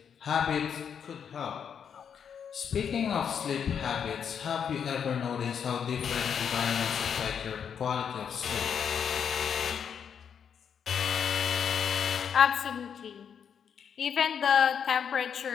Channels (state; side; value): quieter; right; 7.6 dB